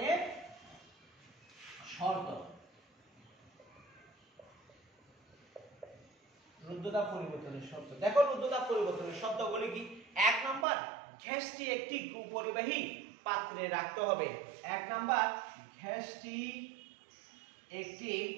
শর্ত। রুদ্ধতাপ পরিবর্তনের শর্ত দেখো, রুদ্ধতাপ পরিবর্তনের শর্তগুলি কি? 1 নাম্বার, গ্যাসটি একটি কুপরিবাহী পাত্রে রাখতে হবে। 1 নাম্বার, গ্যাসটি একটি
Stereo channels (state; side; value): drops out; left; at 10.7 s